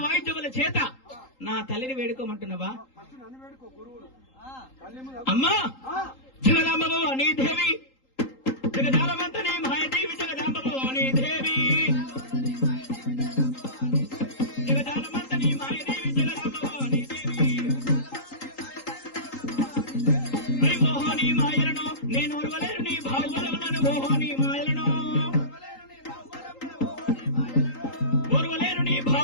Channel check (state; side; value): late; right; 3.8 ms